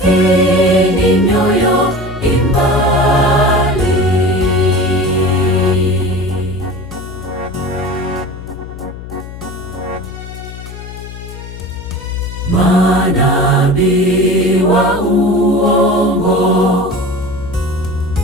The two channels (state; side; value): noise; left; hum, 13 dB below the sound